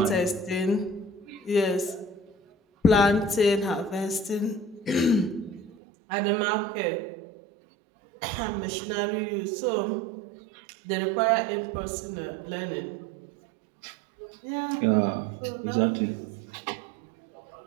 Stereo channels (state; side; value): drops out; left; at 5.7 s